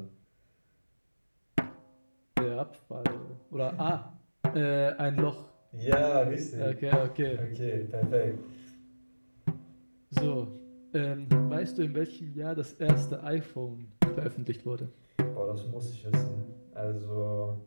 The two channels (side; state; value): both; inverted; correlation -1.00